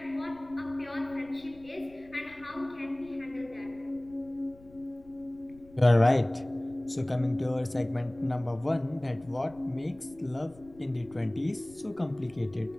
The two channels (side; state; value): left; noise; rumble, 24 dB below the sound